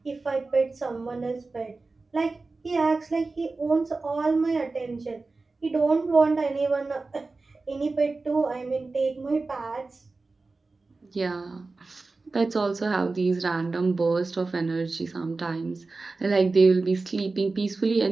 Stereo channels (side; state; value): left; quieter; 3.7 dB